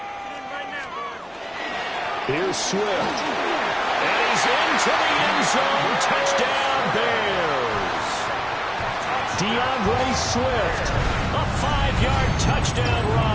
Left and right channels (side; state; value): both; identical; correlation 1.00